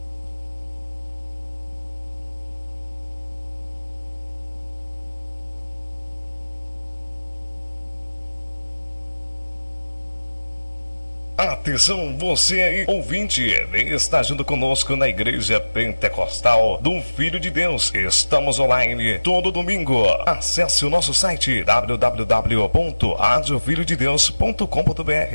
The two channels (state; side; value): inverted; both; correlation -1.00